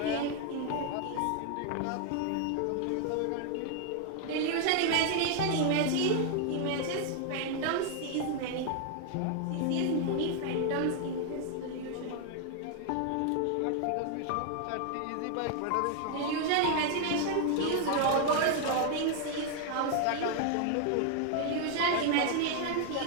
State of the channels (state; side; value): different; both; correlation 0.00